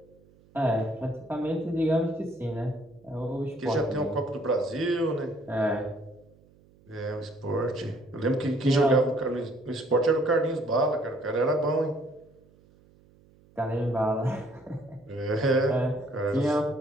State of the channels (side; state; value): right; noise; hum, 29 dB below the sound